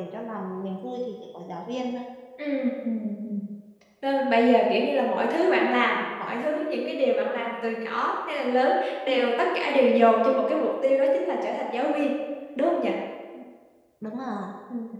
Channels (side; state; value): both; identical; correlation 1.00